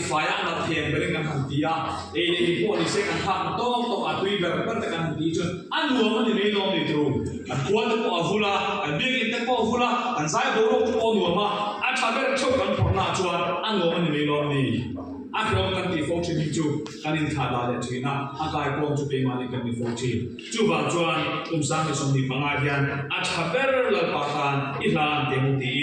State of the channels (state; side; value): identical; both; correlation 1.00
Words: fa ya na thiam beri kan han ti ya ni po ni se kan ha to a tui ber per ta kan ti chun anu ma ni me lo ni tru kan kwa te po avula kan de ki te po avula kan sai bo ro po nu ma chaber chou kan por na chuan anu ma ni me lo ni Akron kan ti phong chin chu kan in tha da le thina akai pom chu pe ma ni kan ti phong chin chu ba chuan sang ni som ni panga hian chaber la pa kan i lan te mu ti